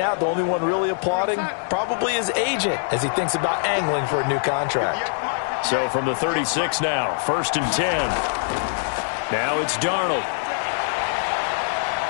the only one really applauding probably his agent as he thinks about angling for a new contract. So from the 36 now, 1st and 10. Now it's Darnold.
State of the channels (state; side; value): silent; right; digital silence